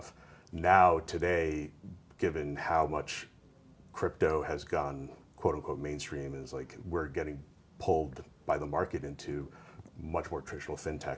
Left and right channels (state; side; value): identical; both; correlation 1.00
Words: Now, today, given how much crypto has gone quote unquote mainstream, is like we're getting pulled by the market into much more traditional